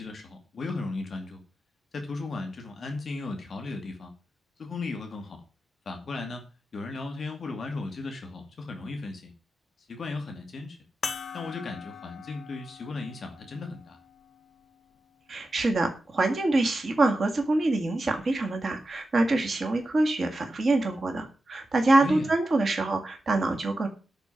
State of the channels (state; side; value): normal; both; correlation 0.91